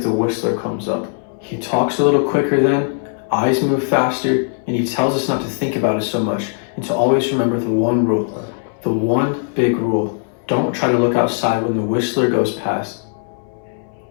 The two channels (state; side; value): silent; right; 63 dB below the other